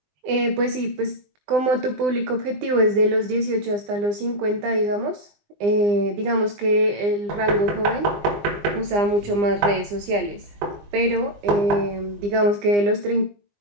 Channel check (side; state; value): left; late; 20 ms